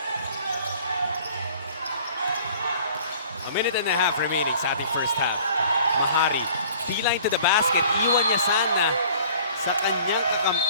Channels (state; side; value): inverted; both; correlation -0.51